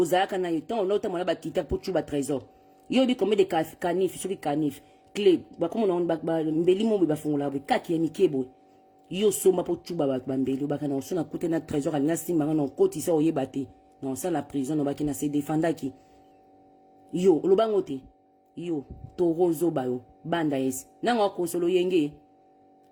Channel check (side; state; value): both; identical; correlation 1.00